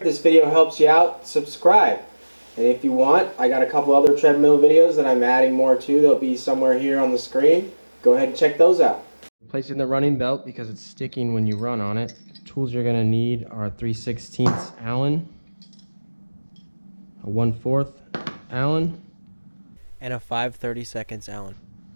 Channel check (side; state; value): both; inverted; correlation -1.00